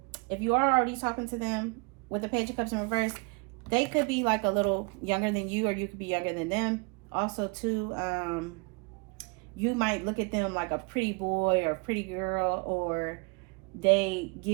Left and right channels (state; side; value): quieter; left; 29.9 dB